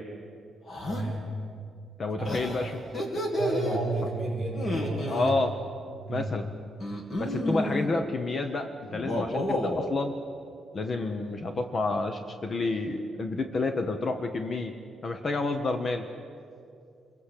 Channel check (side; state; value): both; normal; correlation 0.80